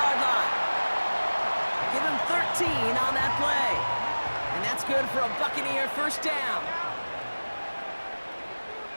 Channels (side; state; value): both; inverted; correlation -1.00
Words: line. Give him 13 on that play. And that's good for a Buccaneer first down.